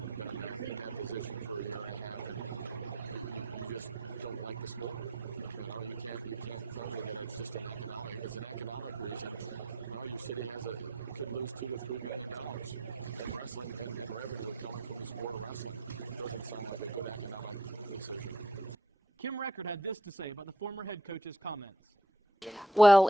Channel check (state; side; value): normal; both; correlation 0.58